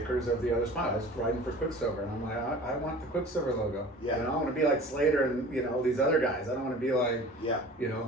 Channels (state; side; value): normal; both; correlation 0.42